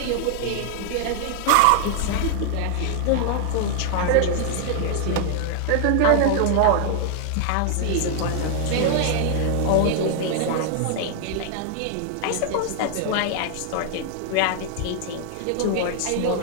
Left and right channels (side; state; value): both; different; correlation 0.00